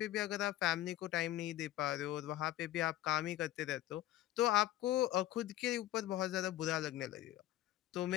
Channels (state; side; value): quieter; right; 14.1 dB